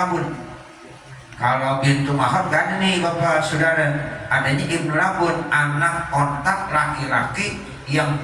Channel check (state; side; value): identical; both; correlation 1.00